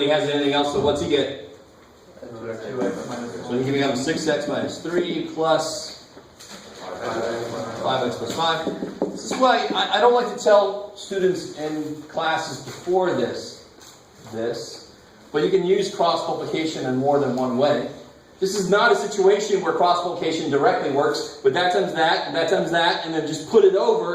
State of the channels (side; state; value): both; identical; correlation 1.00